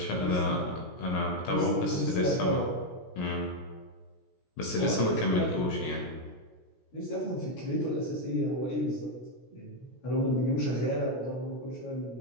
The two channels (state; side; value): late; right; 17 ms